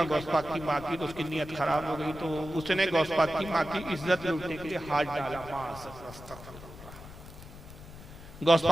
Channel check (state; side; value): noise; left; rumble, 16 dB below the sound